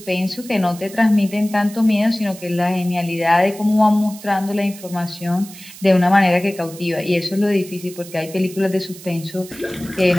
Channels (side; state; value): right; noise; hiss, 17 dB below the sound